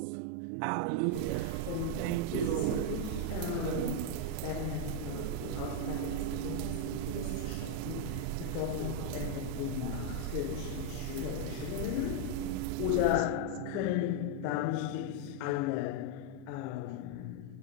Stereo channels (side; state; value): both; different; correlation 0.00